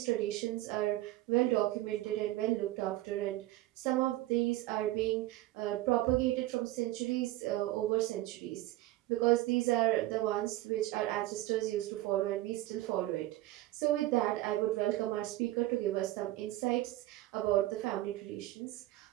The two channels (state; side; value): quieter; left; 16.7 dB